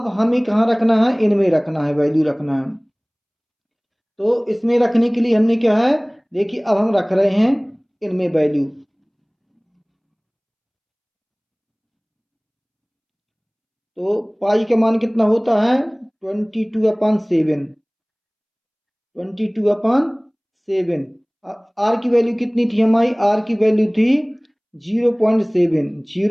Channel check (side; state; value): both; identical; correlation 1.00